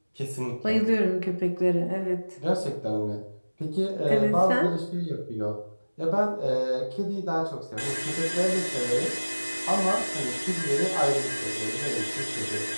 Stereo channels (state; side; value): inverted; both; correlation -1.00